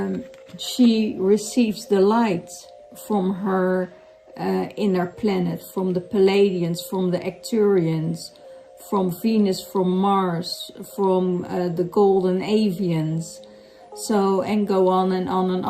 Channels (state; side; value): identical; both; correlation 1.00